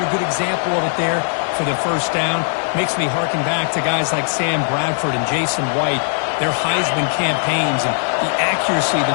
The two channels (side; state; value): right; silent; digital silence